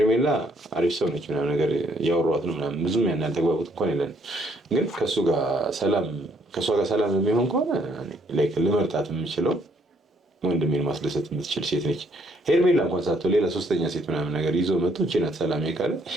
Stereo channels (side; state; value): both; normal; correlation 0.67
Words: አሪፍ ሰው ነች ምናምን ነገር እያወሯት ነው ምናምን ብዙም ያን ያልተግባቡት እንኳን የለን። ግን ከእሷ ጋር ሰላም የሚሆን ከሆነ ልመርጣት የምችለው ወንድሜን ማስደሰት የምትችል ሴት ነች። ሄርሜላ እንኳን ሳትሆን ሌላ ሶስተኛ ሴት ምናምን ነገር ይዞ መጥቶ እቺ ናት ሰላም ካለ